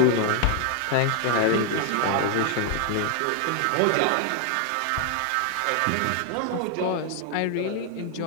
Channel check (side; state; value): both; different; correlation 0.00